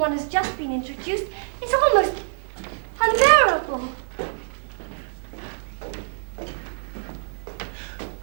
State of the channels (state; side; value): silent; left; digital silence